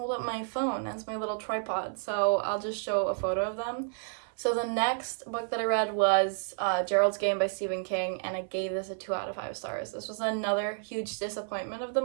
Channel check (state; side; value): silent; left; 57 dB below the other